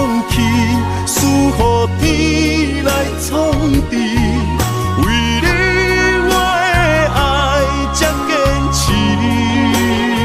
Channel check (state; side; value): identical; both; correlation 1.00